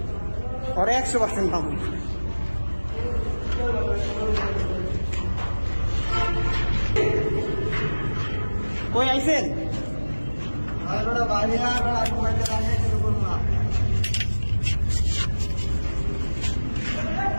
ওরা 100% পাবো কই আইছেন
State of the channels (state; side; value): inverted; both; correlation -1.00